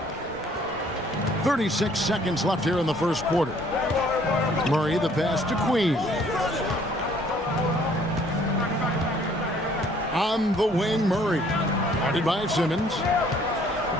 36 seconds left here in the first quarter. Murray the pass to Queen. On the wing, Murray. Guarded by Simmons.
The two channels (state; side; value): normal; both; correlation 0.60